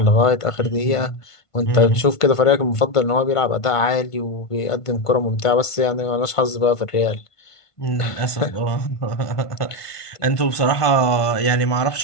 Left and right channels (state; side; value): late; right; 1.5 ms